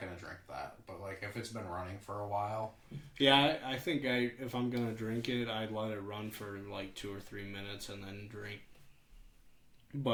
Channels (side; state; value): both; identical; correlation 1.00